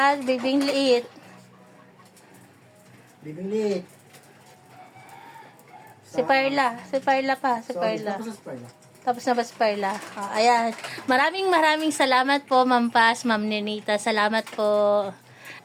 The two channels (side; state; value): both; identical; correlation 1.00